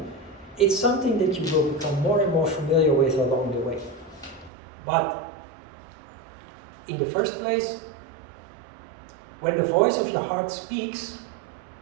It's something that you will become more and more familiar with along the way. But in the first place, when the voice of your heart speaks,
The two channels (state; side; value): drops out; left; at 4.5 s